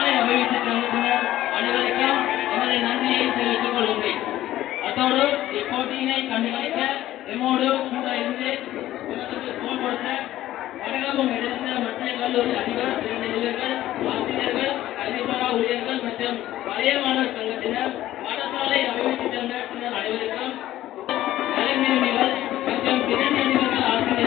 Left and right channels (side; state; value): right; quieter; 14.2 dB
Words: அபிவிருத்தி சங்கத்தினர் அனைவருக்கும் எமது நன்றியை தெரிவித்துக் கொள்கின்றேன். அதோடு இப்போட்டியினை கண்டுகளிக்க எம்மோடு கூட இருந்து தோல் கொடுத்த வடகலூர் எடுத்த மத்திய கல்லூரி அதிபர் பிரதிநிதிகள் ஆசிரியர்கள் கல்விசாரா ஊழியர்கள் மற்றும் பழைய மாணவர் சங்கத்தினர் பாடசாலை அபிவிருத்தி சங்கத்தினர் அனைவருக்கும் கலைஞர்கள் மற்றும் பிரதிநிதிகள்